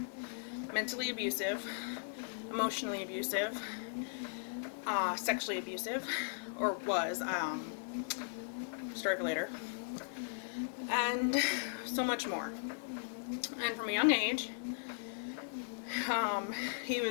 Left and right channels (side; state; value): right; silent; digital silence